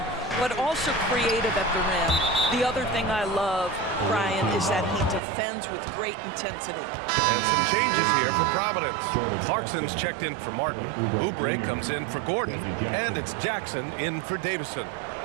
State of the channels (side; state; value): left; drops out; at 5.2 s